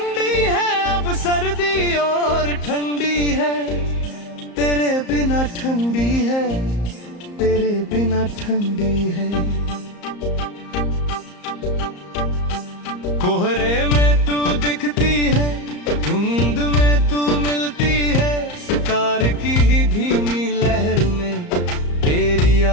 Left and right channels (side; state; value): right; late; 34 ms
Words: है, अब सर्दी और ठंडी है, तेरे बिना ठंडी है, तेरे बिना ठंडी है। कोहरे में तू दिखती है, धुंध में तू मिलती है, सितार की धीमी लहर में तेरी